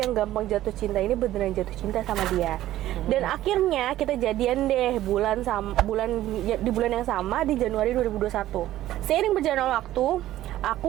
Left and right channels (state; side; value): quieter; left; 14.1 dB